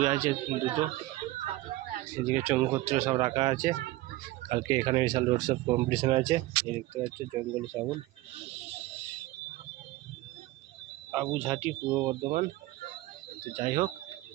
আছে দুটো। এদিকে চঙ্গুপত্র সব রাখা আছে। কালকে এখানে বিশাল রোড শো কম্পিটিশন আছে। এই দেখতে পাচ্ছি জঙ্গলি সাবুন, বাবুঝাটি, পূর্ব বর্ধমান। তো যাই হোক,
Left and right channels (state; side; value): quieter; left; 18.3 dB